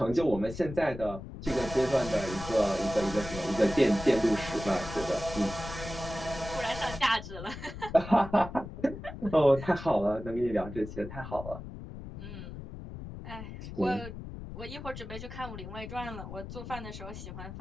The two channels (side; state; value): left; noise; rumble, 10 dB below the sound